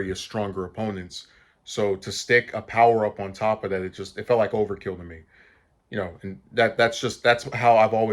stronger opponents. So to stick a power up on top of that, it felt like overkill to me. And that's how I've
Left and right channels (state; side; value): identical; both; correlation 1.00